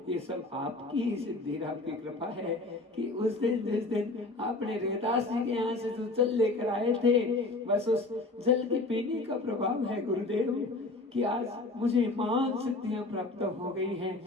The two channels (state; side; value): quieter; right; 3.1 dB